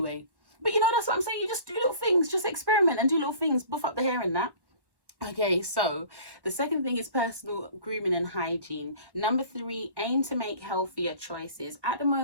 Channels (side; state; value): left; late; 1.1 ms